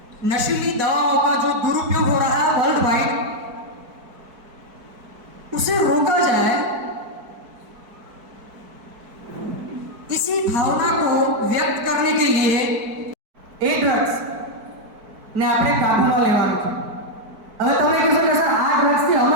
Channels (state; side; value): late; left; 4.6 ms